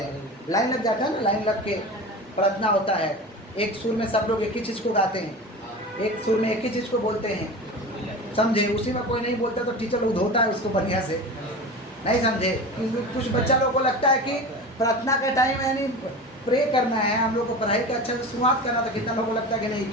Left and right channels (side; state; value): both; normal; correlation 0.31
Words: हैं? लाइन लग जाता है ना, लाइन लग के प्रार्थना होता है। एक सुर में सब लोग एक ही चीज़ को गाते हैं, एक सुर में एक ही चीज़ को बोलते हैं, समझे? उसी में कोई नहीं बोलता तो टीचर लोग धोता है उसको बढ़िया से, नहीं समझे? कुछ बच्चा लोग को लगता है कि प्रार्थना का टाइम यानी प्रे करना है, हम लोग को पढ़ाई का अच्छा से शुरुआत करना था, कितना लोगों को लगता है कि नहीं